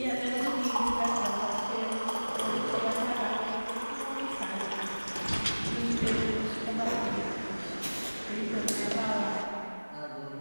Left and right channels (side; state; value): both; inverted; correlation -1.00